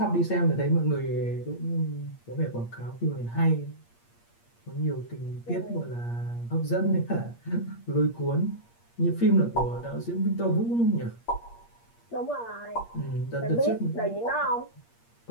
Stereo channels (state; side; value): late; right; 8.5 ms